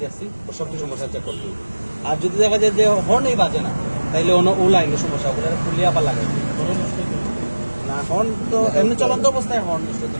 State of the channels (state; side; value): inverted; both; correlation -1.00